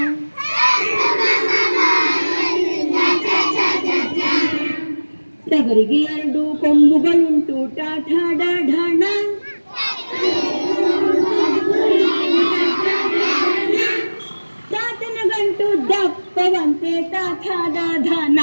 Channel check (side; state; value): both; inverted; correlation -1.00